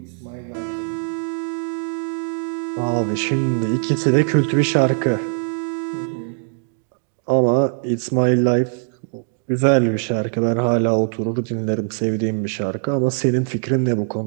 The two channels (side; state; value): left; silent; 65 dB below the other